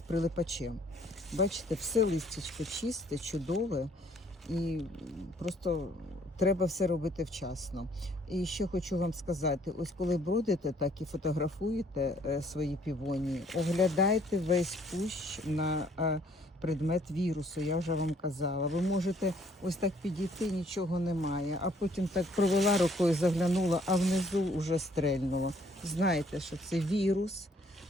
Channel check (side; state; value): both; normal; correlation 0.63